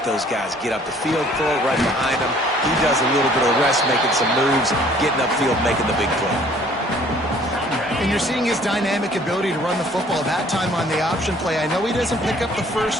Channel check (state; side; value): normal; both; correlation 0.57